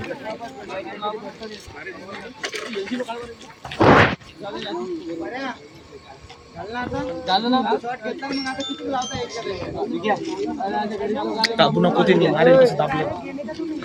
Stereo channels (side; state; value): both; identical; correlation 1.00